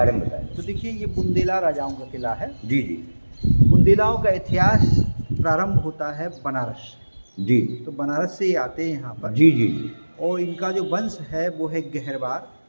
में बताएं। तो देखिए, ये बुंदेला राजाओं का किला है। जी। बुंदेलाओं का इतिहास प्रारंभ होता है बनारस जी। तो बनारस से ये आते हैं यहाँ पर। जी। और इनका जो वंश है वो है गहरवार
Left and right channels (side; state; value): both; inverted; correlation -1.00